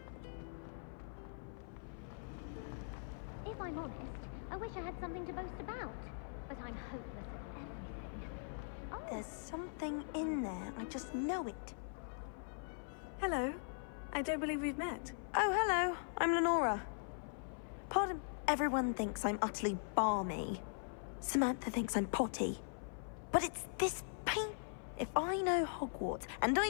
If I'm honest, I wish I had something to boast about. But I'm hopeless at everything. Oh. There's something in there. I just know it. Hello. I don't believe we've met. Oh, hello. I'm Lenora. Pardon, everyone thinks I'm utterly balmy. Samantha thinks I'm potty. But it's this paint. If I know Hogwarts, and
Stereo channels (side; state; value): right; silent; 50 dB below the other